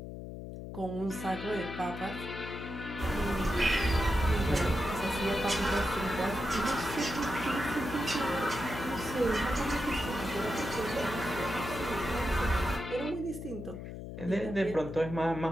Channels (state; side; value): noise; left; hum, 9 dB below the sound